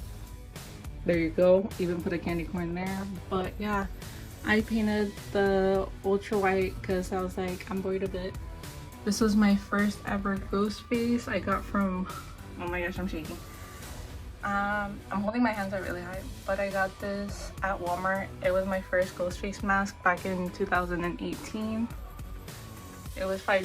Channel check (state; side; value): identical; both; correlation 1.00